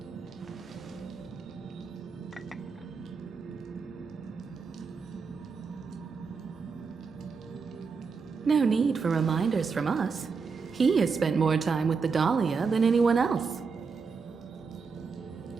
No need for reminders from us. He has spent more time with the Dahlia than anyone else.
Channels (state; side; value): quieter; left; 5.2 dB